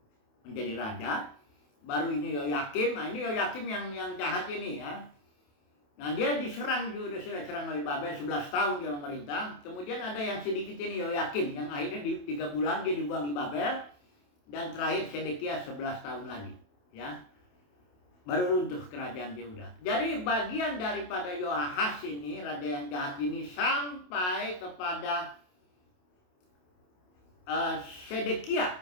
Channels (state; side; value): late; right; 28 ms